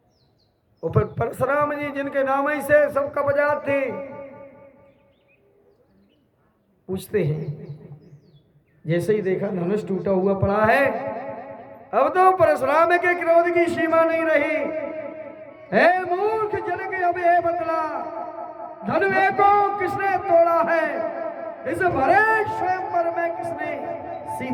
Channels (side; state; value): both; identical; correlation 1.00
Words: ऊपर परशुराम जी जिनके नाम ही से सब कब्जात थे। पूछते हैं, जैसे ही देखा धनुष टूटा हुआ पड़ा है, अब तो परशुराम के क्रोध की सीमा नहीं रही। हे मूर्ख जनक, अब ये बतला धनुष को किसने तोड़ा है? इस भरे स्वयंवर में किसने